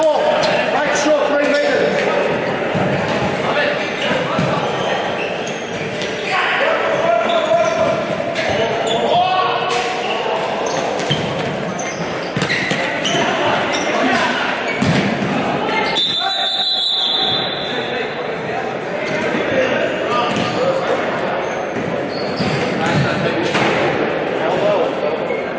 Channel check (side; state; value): both; identical; correlation 1.00